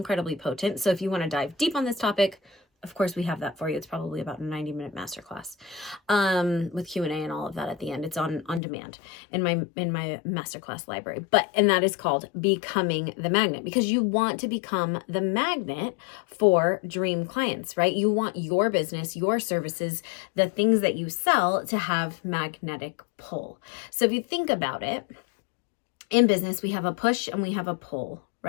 potent. So if you want to dive deep on this topic, of course we have that for you. It's probably about a 90-minute masterclass with Q&A and all of that at the end. It's on demand in my masterclass library. And that is called Becoming the Magnet, because you want to become the magnet for dream clients, right? You want your business, your services, the things that you sell to have magnetic pull. So if you think about it, in business, we have a push and we have a pull,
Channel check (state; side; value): drops out; right; at 8.6 s